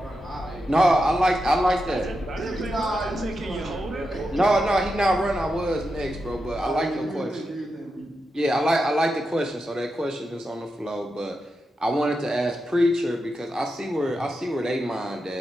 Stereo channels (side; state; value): both; normal; correlation 0.88